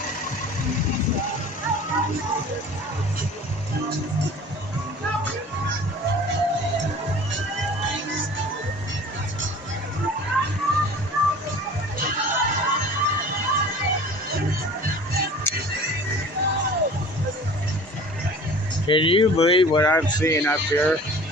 Can you believe what I'm seeing up here?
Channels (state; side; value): normal; both; correlation 0.44